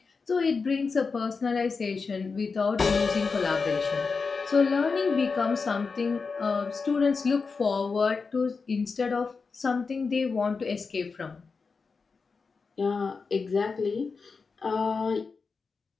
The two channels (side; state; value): right; quieter; 4.7 dB